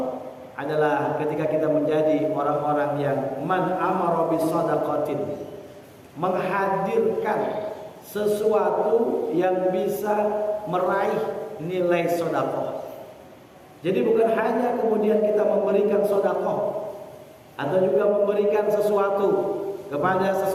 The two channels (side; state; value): both; identical; correlation 1.00